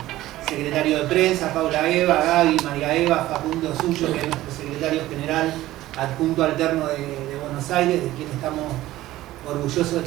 secretario de prensa, Paula Eva, Gaby, María Eva, Facundo Suyo, que es nuestro secretario general adjunto alterno de Buenos Aires, de quien estamos orgullosos de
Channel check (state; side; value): quieter; left; 15.8 dB